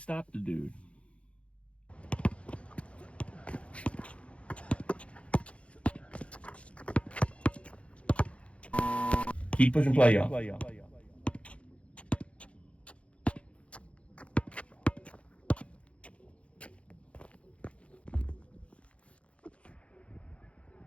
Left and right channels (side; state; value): right; late; 0.061 ms